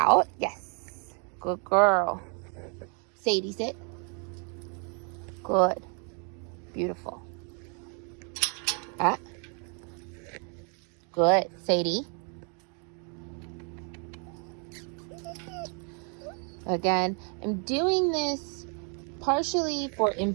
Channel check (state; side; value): quieter; left; 39.0 dB